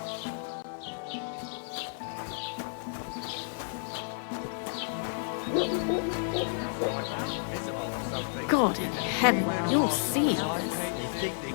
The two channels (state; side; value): silent; right; 57 dB below the other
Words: God in heaven, you'll see all this. They think they